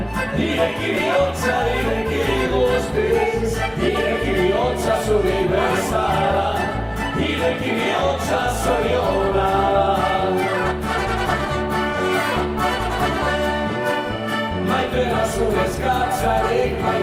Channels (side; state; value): both; identical; correlation 1.00